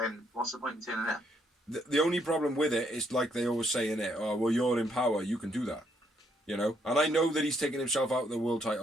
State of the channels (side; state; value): both; normal; correlation 0.72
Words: what's the point in turning it? The only problem with it is like they always say in it, oh, well, you're in power, you can do that. You know? And I know that he's taken himself out of the world